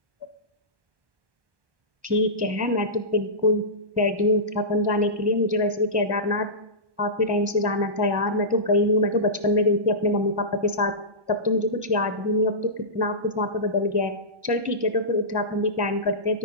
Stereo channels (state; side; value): late; left; 1.1 ms